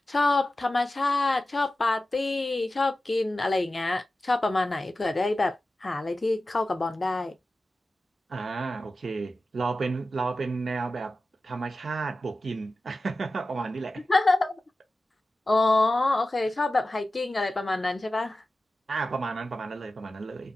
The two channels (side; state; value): both; normal; correlation 0.94